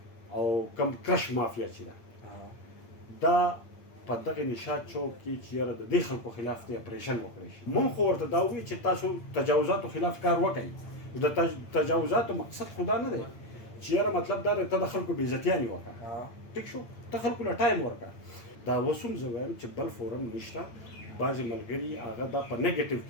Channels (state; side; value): late; right; 8.8 ms